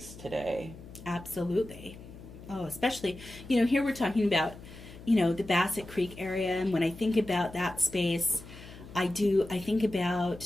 today. Absolutely. Oh, especially, here we're talking about, the Bassett Creek area, and when I think about that space, I think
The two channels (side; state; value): left; noise; hum, 16 dB below the sound